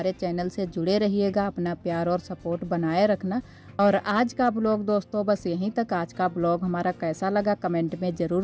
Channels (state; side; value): identical; both; correlation 1.00